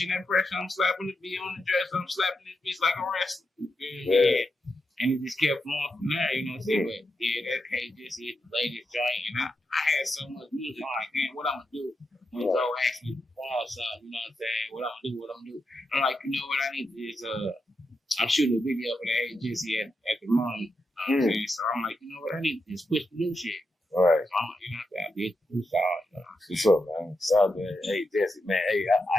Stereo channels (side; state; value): both; normal; correlation 0.86